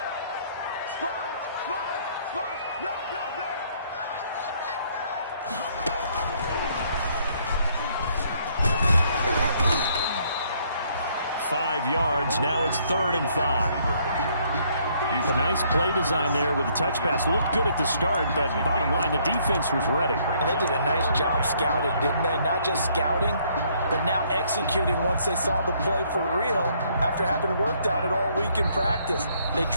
Spot, no. 5 yards. Now it's 3rd and 5. A nice play design there with the touch pass. Looked good at the start, but bottom line, the defense was ready. And they did a nice job scouting, didn't they? Not just scouting, but now executing once they saw the play for real after having worked on it all week in practice. They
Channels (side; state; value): both; inverted; correlation -0.66